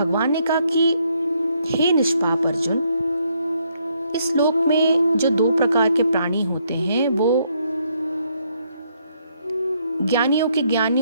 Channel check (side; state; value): both; inverted; correlation -0.72